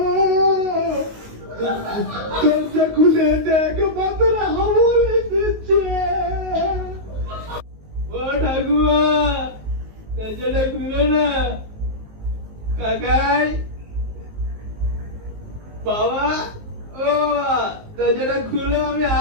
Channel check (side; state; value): left; late; 19 ms